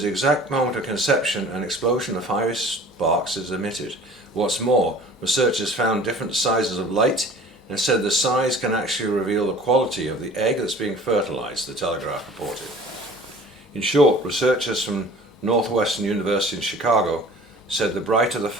the exact moment of conception an explosion of fiery sparks is emitted. What's more, researchers found different sizes of light and said the size can actually reveal the quality of the egg that's being fertilized, the Telegraph reported. In short, researchers from Northwestern University in Chicago said the brighter the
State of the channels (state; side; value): normal; both; correlation 0.46